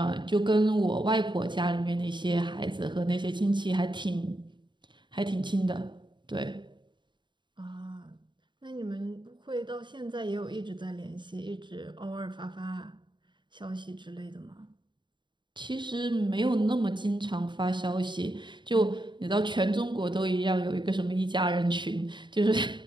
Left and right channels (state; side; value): late; left; 0.23 ms